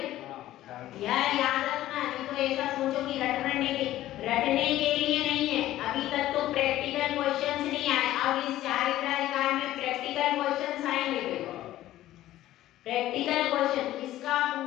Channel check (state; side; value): quieter; right; 14.4 dB